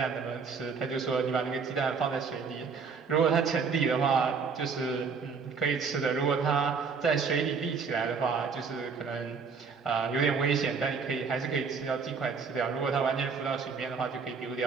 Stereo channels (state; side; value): quieter; left; 5.4 dB